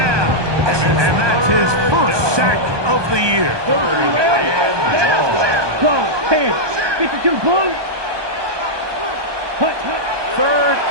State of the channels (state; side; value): late; left; 1.2 ms